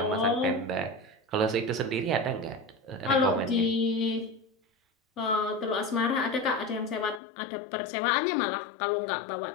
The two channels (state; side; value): drops out; right; at 7.2 s